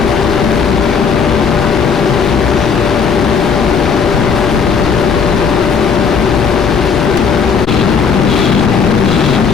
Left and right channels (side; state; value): right; quieter; 6.0 dB